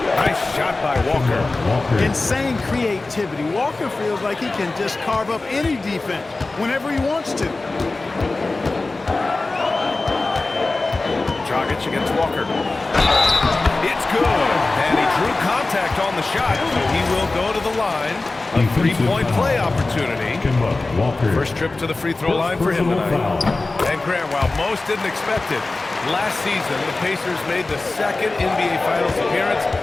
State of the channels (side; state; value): right; quieter; 3.3 dB